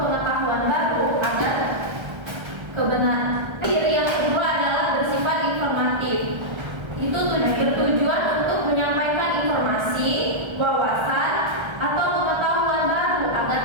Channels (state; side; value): late; left; 1.3 ms